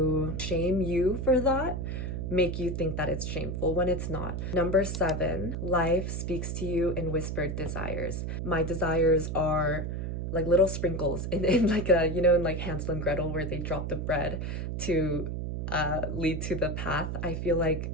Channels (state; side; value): noise; right; hum, 3 dB below the sound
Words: shame you for that, make you think that it's shameful when it's not. Number 7, life speaks to you in whispered desires. My desires are like little sprinkles in like a, you know, in like Hansel and Gretel where they drop the bread to lead to the path. I feel like